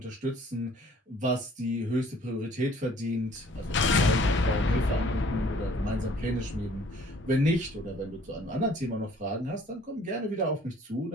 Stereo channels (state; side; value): normal; both; correlation 0.56